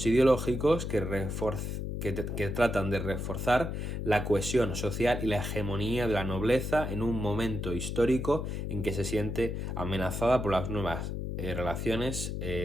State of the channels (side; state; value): left; noise; hum, 3 dB below the sound